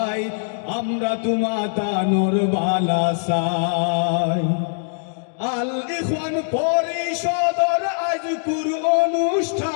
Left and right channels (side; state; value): right; silent; digital silence